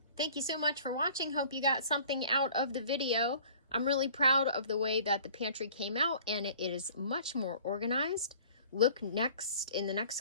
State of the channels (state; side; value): inverted; both; correlation -0.50